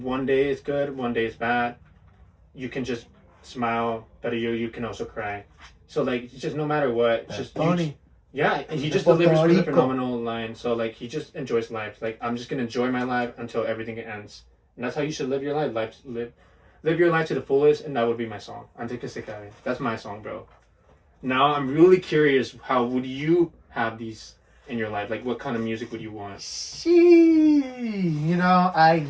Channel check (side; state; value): both; identical; correlation 1.00